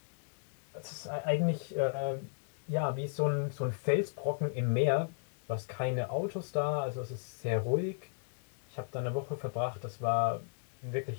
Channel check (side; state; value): right; silent; 54 dB below the other